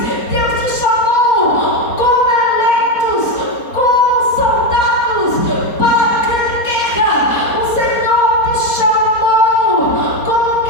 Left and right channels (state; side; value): late; right; 4.3 ms